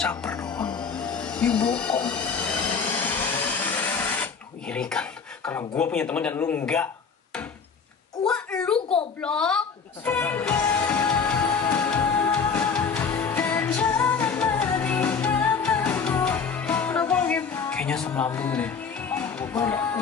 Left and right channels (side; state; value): right; quieter; 5.7 dB